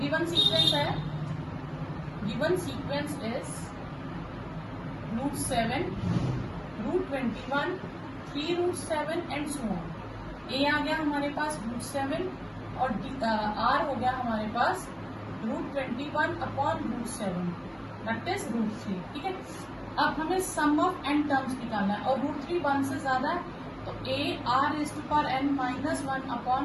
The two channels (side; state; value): both; identical; correlation 1.00